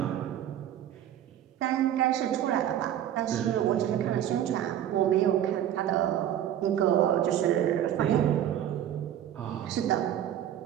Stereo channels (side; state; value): left; quieter; 11.0 dB